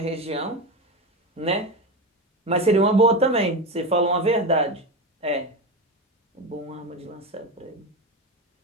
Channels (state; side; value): normal; both; correlation 0.19